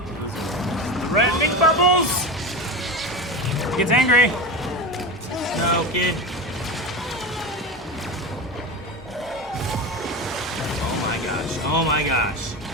Red big bubbles! He gets angry. No, kid. Oh my gosh.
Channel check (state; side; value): normal; both; correlation 0.23